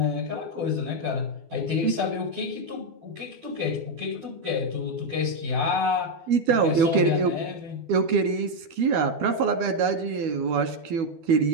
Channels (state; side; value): late; left; 12 ms